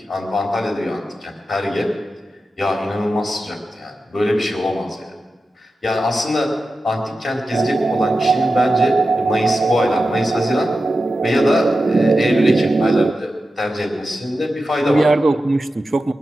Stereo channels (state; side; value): normal; both; correlation 0.92